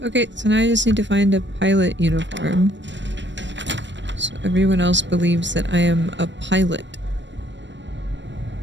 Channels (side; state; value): left; late; 0.53 ms